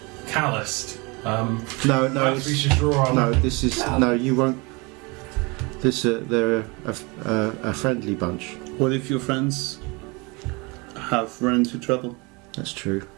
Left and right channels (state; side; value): quieter; left; 27.7 dB